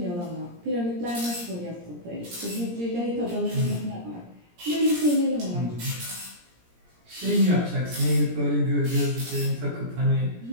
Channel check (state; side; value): late; left; 17 ms